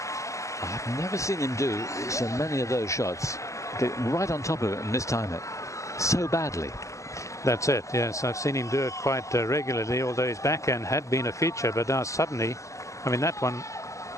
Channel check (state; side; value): late; right; 0.15 ms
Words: I've never seen him do so many of those shots. Get right on top of it and mistime it so badly. That's it, yes. I've seen him do it quite regularly, although his backhand had been a feature, but now suddenly, I mean, that one